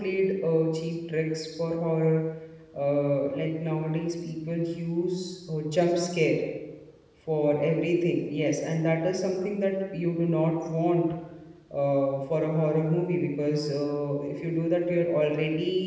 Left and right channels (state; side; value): identical; both; correlation 1.00